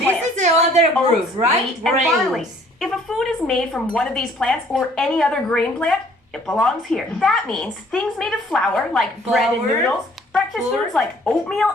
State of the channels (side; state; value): both; normal; correlation 0.58